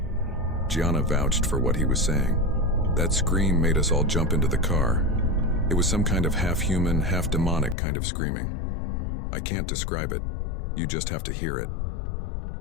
Gianna vouched for what he was saying. That scream made us all jump into the car. It was some kind of half-human, half-demonic kind of screaming. I can't describe it. You just have to hear it.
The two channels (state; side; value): drops out; right; at 7.8 s